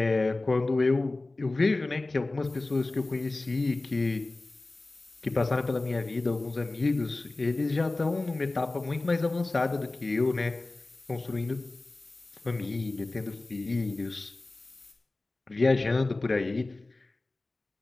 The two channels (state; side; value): quieter; right; 3.1 dB